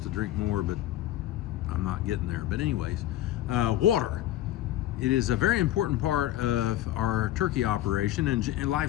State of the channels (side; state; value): right; quieter; 13.7 dB